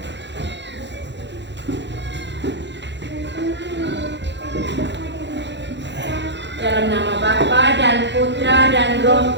Dalam nama Bapa dan Putra dan Roh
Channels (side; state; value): left; late; 0.52 ms